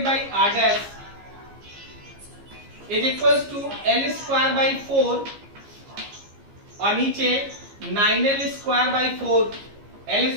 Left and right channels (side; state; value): left; late; 15 ms